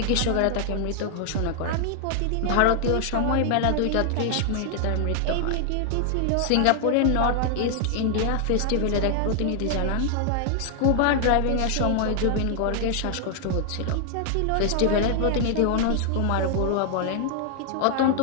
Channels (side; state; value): both; different; correlation 0.00